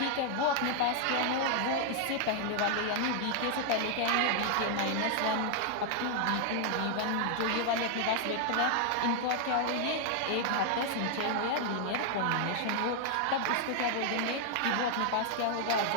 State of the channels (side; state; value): both; different; correlation 0.00